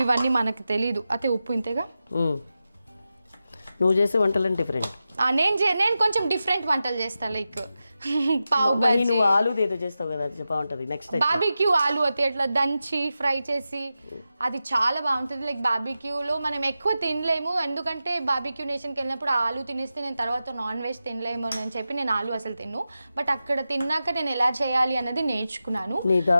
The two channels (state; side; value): inverted; both; correlation -0.92